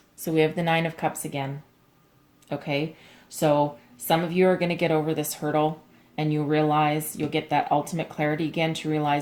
So we have the Nine of Cups again. Okay. So some of you are going to get over this hurdle, and you'll get that ultimate clarity again to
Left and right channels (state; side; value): identical; both; correlation 1.00